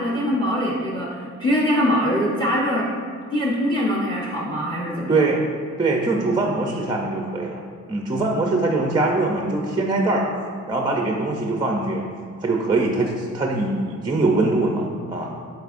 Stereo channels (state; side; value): normal; both; correlation 0.49